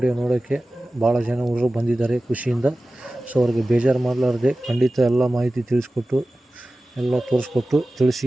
ನೋಡೋಕ್ಕೆ ಭಾಳ ಜನ ಹುಡುಗರು ಬಂದಿದ್ದಾರೆ ಖುಷಿಯಿಂದ. ಸೊ ಅವ್ರಿಗೆ ಬೇಜಾರು ಮಾಡಲಾರ್ದೆ ಖಂಡಿತ ಎಲ್ಲ ಮಾಹಿತಿ ತಿಳಿಸ್ಕೊಟ್ಟು ಎಲ್ಲ ತೋರಿಸ್ಕೊಟ್ಟು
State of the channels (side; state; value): both; normal; correlation 0.96